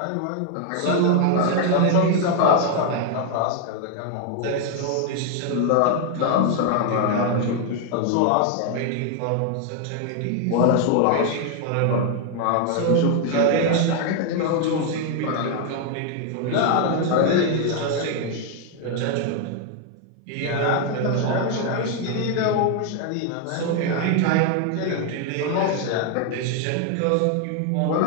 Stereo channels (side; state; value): both; different; correlation 0.00